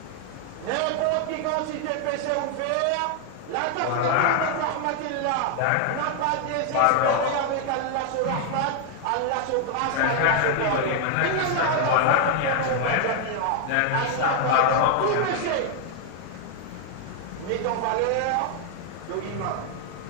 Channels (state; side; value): different; both; correlation 0.00